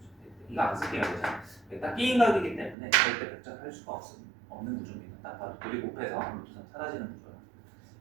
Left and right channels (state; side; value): drops out; left; at 2.8 s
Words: 이거 안 쓸게요. 딱 끼인각이기 때문에 절대 백작할 수가 없는 구조입니다. 딱 봐도 둘이 곱해서 루트 3 사라지는 구조라